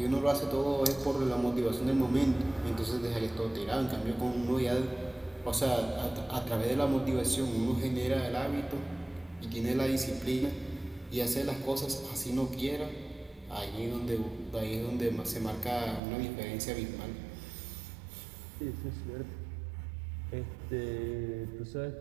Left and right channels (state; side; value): drops out; left; at 16.0 s